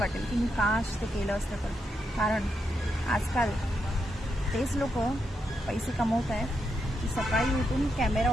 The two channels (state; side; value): normal; both; correlation 0.82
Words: की मी काश ते केलं असतं तर. कारण आजकाल तेच लोक पैसे कमवत आहेत की सकाळी उठून कॅमेरा